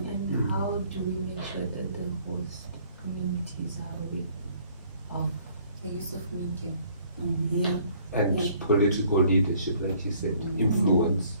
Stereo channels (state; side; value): inverted; both; correlation -0.60